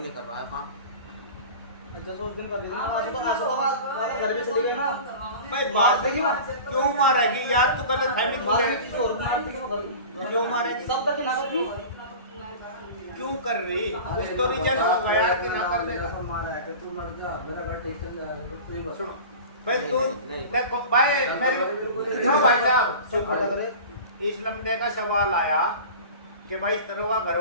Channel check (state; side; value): inverted; both; correlation -0.36